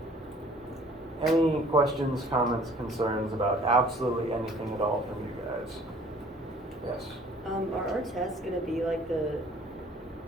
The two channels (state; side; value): normal; both; correlation 0.54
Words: any questions, comments, concerns about absolutely anything at all from you guys? Yes? Are our tests gonna be like